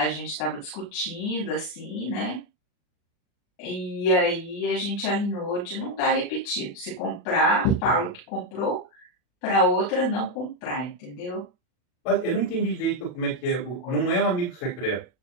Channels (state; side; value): late; right; 40 ms